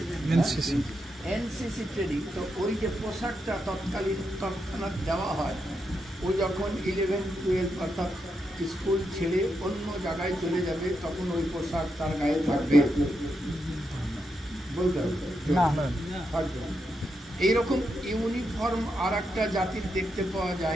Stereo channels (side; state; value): both; normal; correlation 0.84